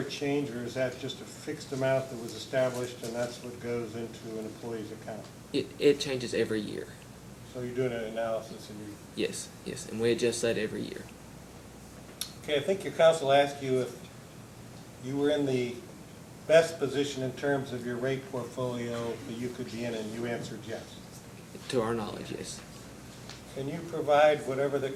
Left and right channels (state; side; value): identical; both; correlation 1.00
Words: change, or is that just a fixed amount that was established and that's what goes into an employee's account? It changes every year. So you're doing an analysis and you, Yes, yes, and we adjust that every year. okay, I think your counsel asked you if you were in the best position in terms of your rate portfolio that you could be in, and you answered yes. To our knowledge, yes. Can you provide whatever the